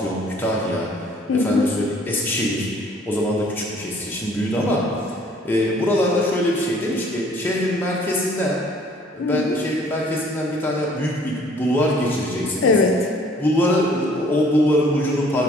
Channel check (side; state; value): both; normal; correlation 0.57